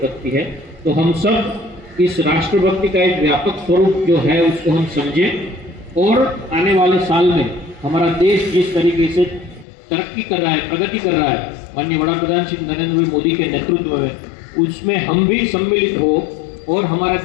है। तो हम सब इस राष्ट्रभक्ति का एक व्यापक स्वरूप जो है उसको हम समझें, और आने वाले साल में हमारा देश जिस तरीके से तरक्की कर रहा है, प्रगति कर रहा है, माननीय वड़ा प्रधान श्री नरेंद्र भाई मोदी के नेतृत्व में, उसमें हम भी सम्मिलित हो और हमारा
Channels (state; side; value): drops out; right; at 9.7 s